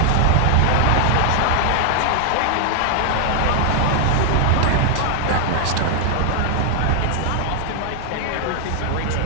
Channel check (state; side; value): different; both; correlation 0.00